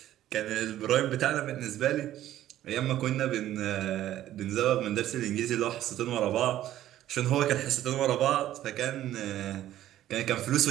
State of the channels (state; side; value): quieter; left; 13.0 dB